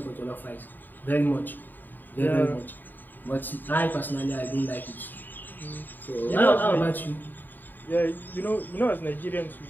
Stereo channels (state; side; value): late; right; 0.090 ms